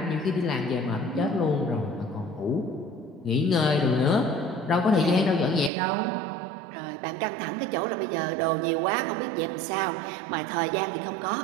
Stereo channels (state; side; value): drops out; left; at 5.7 s